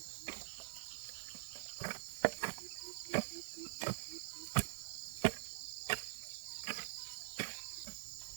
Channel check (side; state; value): left; silent; digital silence